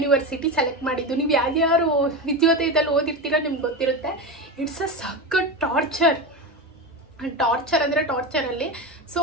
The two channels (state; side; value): normal; both; correlation 0.20